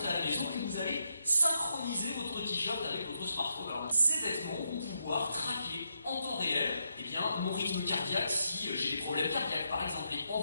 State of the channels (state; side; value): inverted; both; correlation -0.81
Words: à la maison et vous allez synchroniser votre t-shirt avec votre smartphone. Alors, ces vêtements vont pouvoir traquer en temps réel mon rythme cardiaque si j'ai des problèmes cardiaques par exemple, et